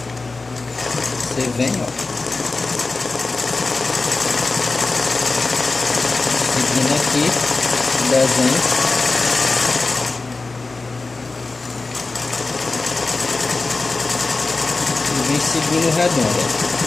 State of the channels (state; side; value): quieter; right; 3.6 dB